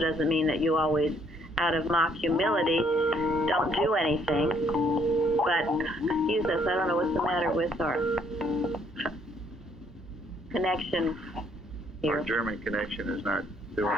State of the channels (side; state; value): both; normal; correlation 0.66